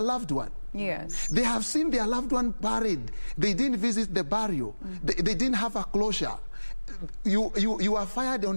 one. Yes. They have seen their loved one buried. They didn't visit the burial. They didn't have a closure. You are fired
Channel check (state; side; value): inverted; both; correlation -1.00